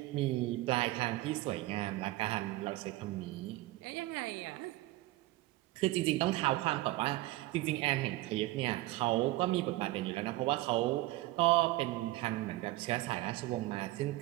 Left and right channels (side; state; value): left; quieter; 18.3 dB